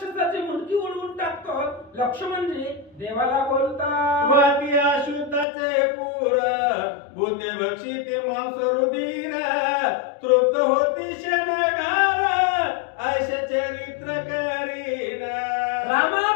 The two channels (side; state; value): right; drops out; at 5.5 s